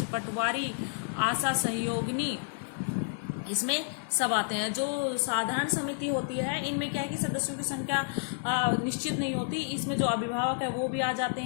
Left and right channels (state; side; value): silent; right; digital silence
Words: पटवारी, आशा सहयोगिनी, इसमें सब आते हैं। जो साधारण समिति होती है, इनमें क्या है कि सदस्यों की संख्या निश्चित नहीं होती। इसमें जो अभिभावक है वो भी आ जाते